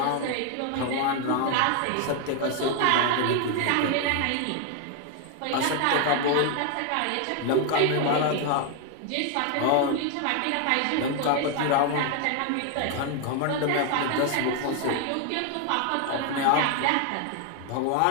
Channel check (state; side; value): different; both; correlation 0.01